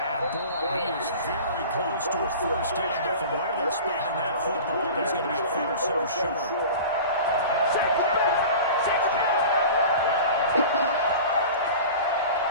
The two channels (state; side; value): inverted; both; correlation -0.37